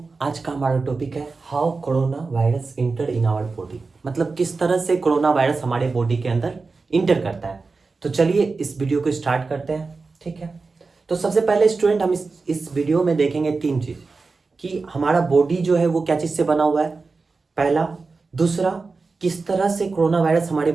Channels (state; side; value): quieter; left; 4.1 dB